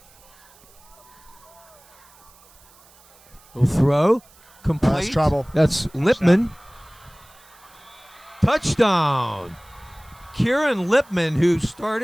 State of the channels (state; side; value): noise; right; hiss, 28 dB below the sound